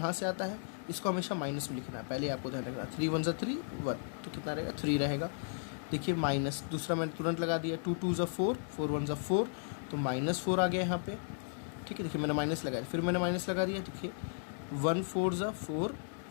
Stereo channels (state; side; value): silent; right; digital silence